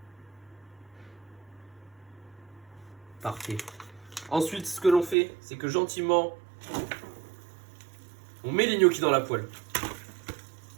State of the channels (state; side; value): drops out; left; at 5.2 s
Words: Parfait. Ensuite, ce que l'on fait, c'est que gentiment... on met les gnocchis dans la poêle.